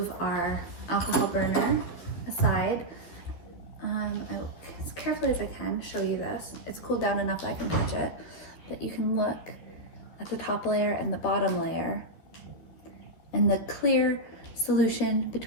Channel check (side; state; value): right; late; 12 ms